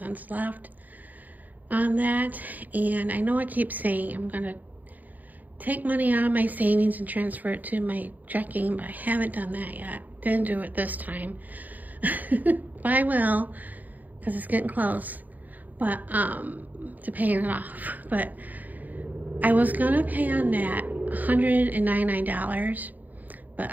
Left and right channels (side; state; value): left; late; 0.082 ms